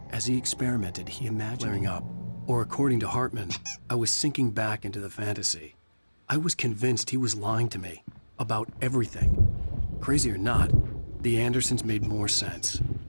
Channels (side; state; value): both; inverted; correlation -1.00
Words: As he experimented, he imagined clearing up. Or according to Hartman, I was sinking back into the fantasy. I was convinced he was lying to me about everything. Crazy or not, the Andersons made more sense.